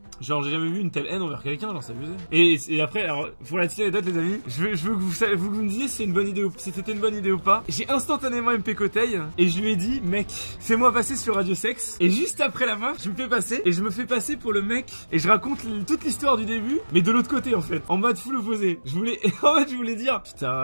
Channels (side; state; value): both; inverted; correlation -1.00